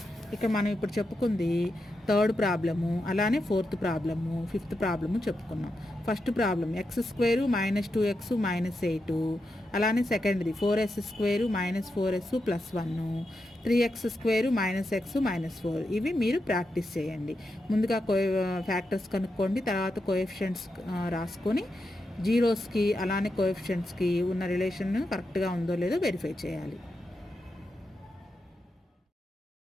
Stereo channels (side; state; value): both; normal; correlation 0.87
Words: ఇక మనం ఇప్పుడు చెప్పుకుంది 3rd ప్రాబ్లము, అలానే 4th ప్రాబ్లము, 5th ప్రాబ్లము చెప్పుకున్నాం. ఫస్ట్ ప్రాబ్లం x² -2x -8, అలానే సెకండ్ది 4s² -4s +1, 3x² -x -4. ఇవి మీరు ప్రాక్టీస్ చేయండి. ముందుగా ఫ్యాక్టర్స్ కనుక్కోండి, తర్వాత కోఎఫిషియంట్స్ రాసుకొని జీరోస్కి అలానే కోఎఫిషియంట్స్కి ఉన్న రిలేషన్ కరెక్ట్గా ఉందో లేదో వెరిఫై చేయాలి.